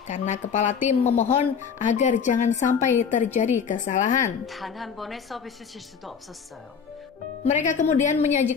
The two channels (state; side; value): quieter; right; 6.5 dB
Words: karena kepala tim memohon agar jangan sampai terjadi kesalahan. 단 한 번의 서비스 실수도 없었어요. Mereka kemudian